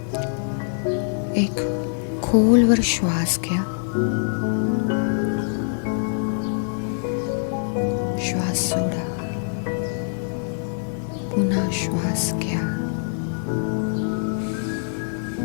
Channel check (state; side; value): silent; right; digital silence